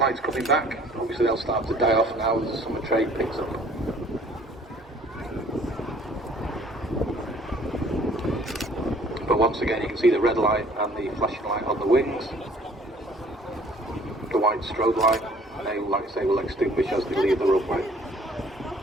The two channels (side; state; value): both; normal; correlation 0.55